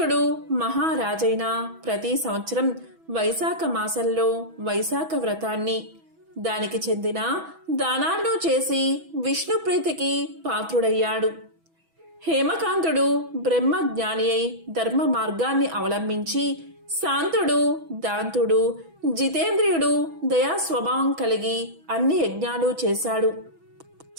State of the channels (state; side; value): late; left; 6.1 ms